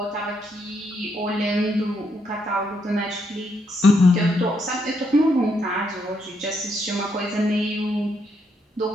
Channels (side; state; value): both; normal; correlation 0.76